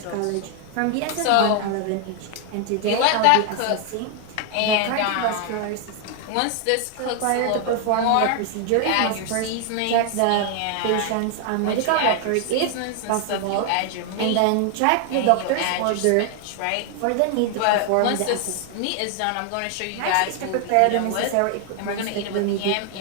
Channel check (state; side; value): different; both; correlation 0.00